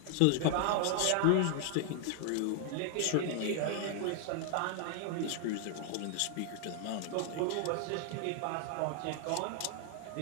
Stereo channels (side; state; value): both; different; correlation 0.00